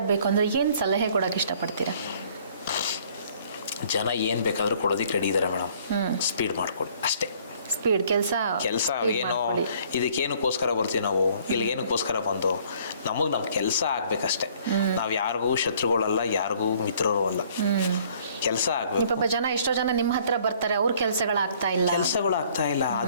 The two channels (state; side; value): inverted; both; correlation -0.58